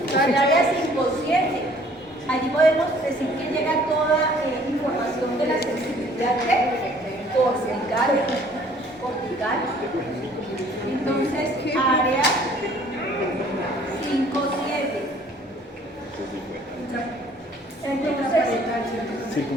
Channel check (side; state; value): both; normal; correlation 0.57